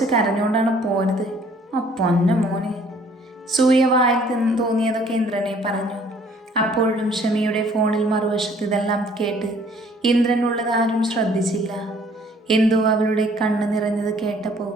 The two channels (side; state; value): both; normal; correlation 0.59